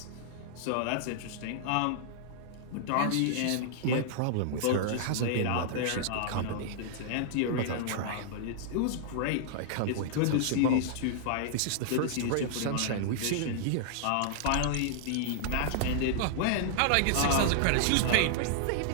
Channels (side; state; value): both; different; correlation -0.01